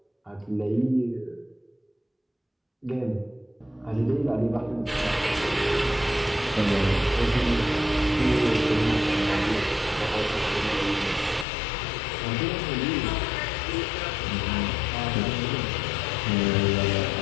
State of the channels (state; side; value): drops out; right; at 11.5 s